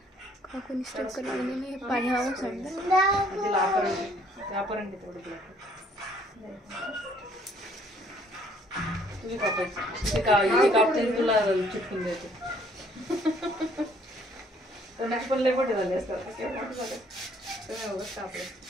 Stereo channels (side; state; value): both; normal; correlation 0.62